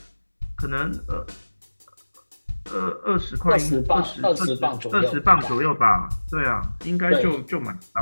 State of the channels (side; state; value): both; inverted; correlation -1.00